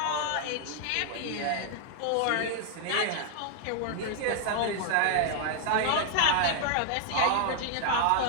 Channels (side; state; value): both; different; correlation 0.00